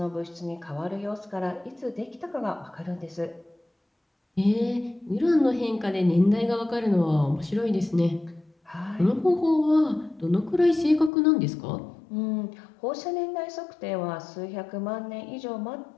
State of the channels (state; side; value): drops out; right; at 11.1 s